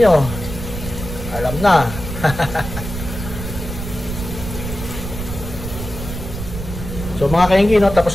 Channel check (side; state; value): right; noise; rumble, 8 dB below the sound